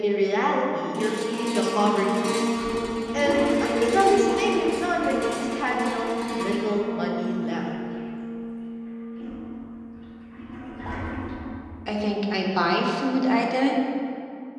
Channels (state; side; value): identical; both; correlation 1.00